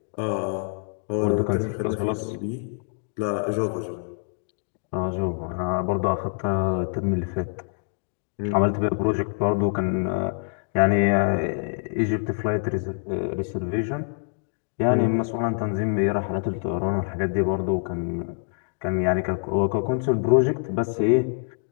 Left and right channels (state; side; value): silent; right; digital silence